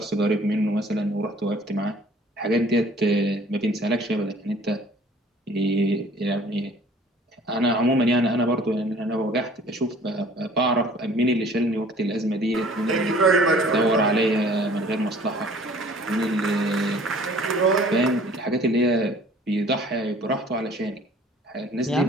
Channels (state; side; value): normal; both; correlation 0.52